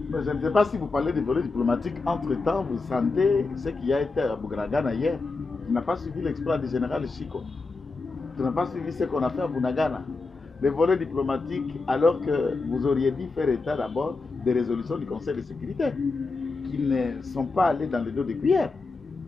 Mais je ne sais pas si vous parlez des volets diplomatiques. Entre-temps, vous sentez ce qui a été à Bougragana hier. Tu n'as pas suivi l'exploit du général Chico. Tu n'as pas suivi ce qu'on a fait à Bunagana. Les volets diplomatiques, alors que vous auriez dû faire état d'abord des résolutions du Conseil de sécurité, qui ne sont pas allées dans le dos des cuillères.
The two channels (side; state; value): right; quieter; 3.8 dB